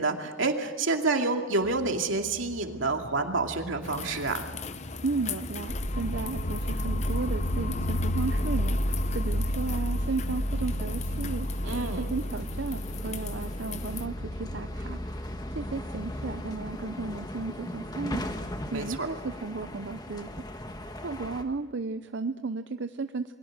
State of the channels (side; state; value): both; normal; correlation 0.41